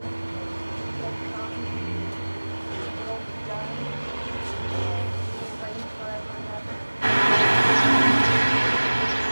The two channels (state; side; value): inverted; both; correlation -1.00